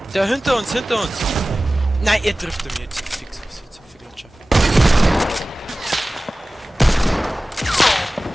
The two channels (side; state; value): both; normal; correlation 0.97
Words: Der hinter uns, hinter uns. Nein, er trifft mich jetzt. Fix, was jetzt für Gletscher.